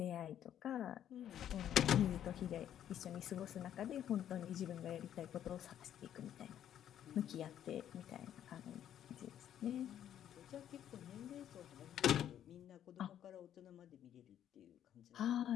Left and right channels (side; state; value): right; quieter; 10.5 dB